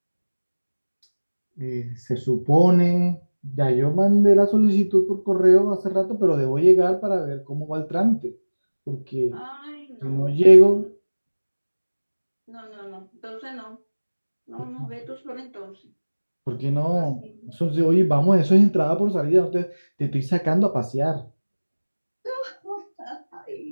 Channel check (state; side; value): inverted; both; correlation -1.00